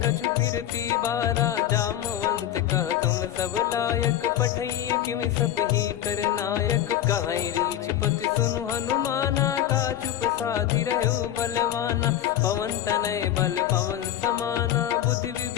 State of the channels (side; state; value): right; quieter; 11.5 dB